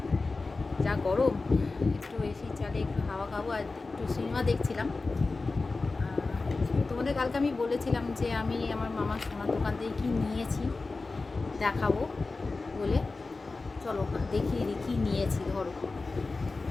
যা গরম, একটু এসি চালে একটু হাওয়া খাবো আর একটু সিনেমা দেখছিলাম। তোমাদের কালকে আমি বলেছিলাম যে আমি আমার মামার সোনার দোকান থেকে কী নিয়েছি দেখাবো বলে। চলো দেখিয়ে দিই কী নিয়েছি। ধরো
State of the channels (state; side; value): quieter; right; 3.7 dB